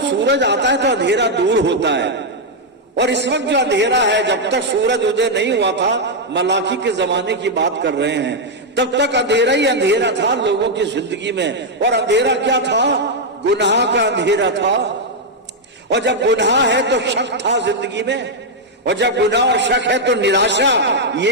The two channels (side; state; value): both; normal; correlation -0.01